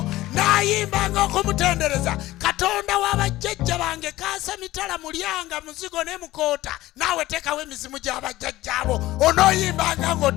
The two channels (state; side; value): quieter; right; 16.8 dB